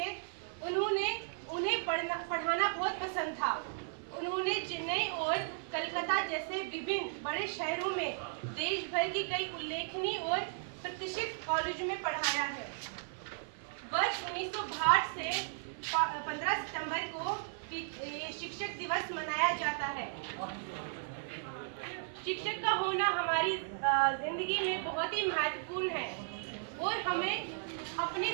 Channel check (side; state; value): left; silent; 54 dB below the other